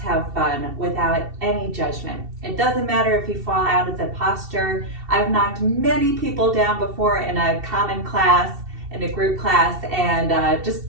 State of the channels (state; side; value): late; left; 2.7 ms